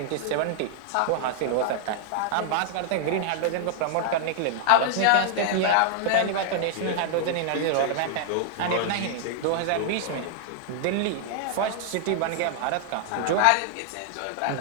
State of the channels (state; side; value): different; both; correlation 0.00